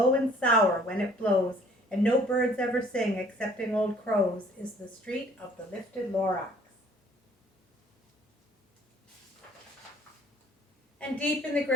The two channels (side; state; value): both; normal; correlation 0.56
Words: and sour when it blows and no birds ever sing excepting old crows is the street of the lifted Lorax. And deep in the